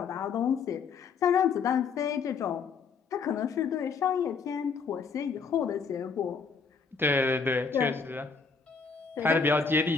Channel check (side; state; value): right; quieter; 5.4 dB